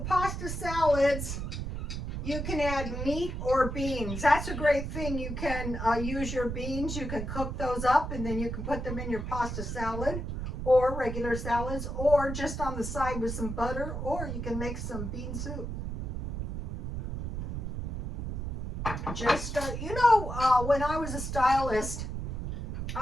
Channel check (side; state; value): right; noise; rumble, 4 dB below the sound